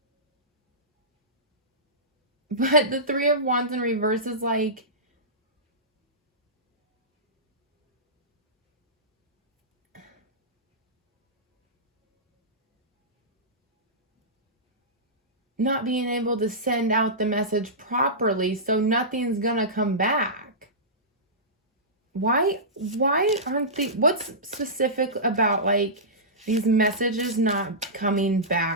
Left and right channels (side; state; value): both; normal; correlation -0.17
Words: But the Three of Wands in reverse is like, not being able to send out the message properly, so nothing's gonna come back. Why aren't they, what's specific about like these messages not coming